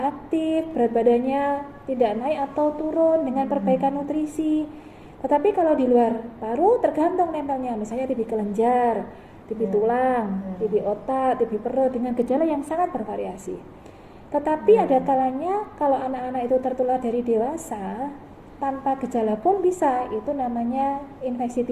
aktif, berat badannya tidak naik atau turun dengan perbaikan nutrisi. Tetapi kalau di luar paru tergantung nempelnya, misalnya TB kelenjar, TB tulang, TB otak, TB perut dengan gejala yang sangat bervariasi. Tetapi ada kalanya kalau anak-anak itu tertular dari dewasa tanpa gejala pun bisa, itu namanya infeksi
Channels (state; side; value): identical; both; correlation 1.00